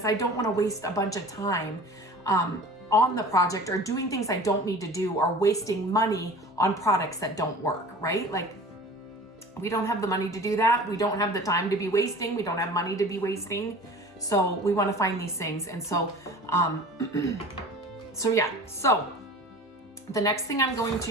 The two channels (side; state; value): both; normal; correlation 0.40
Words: I don't wanna waste a bunch of time on the project or doing things I don't need to do or wasting money on products that don't work, right? Like, we don't have the money to do that. We don't have the time to be wasting. We don't have money to be wasting. So we want to find these things. And so, so the next thing I'm going